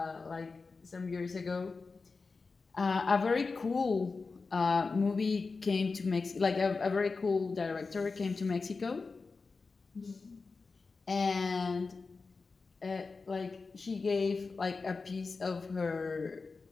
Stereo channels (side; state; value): right; quieter; 4.3 dB